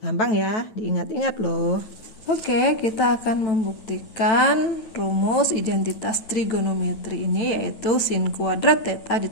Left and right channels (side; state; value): right; late; 9.3 ms